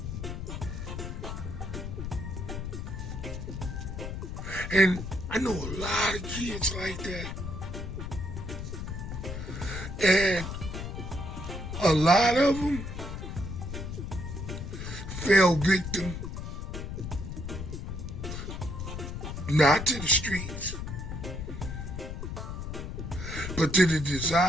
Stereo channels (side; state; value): left; noise; rumble, 6 dB below the sound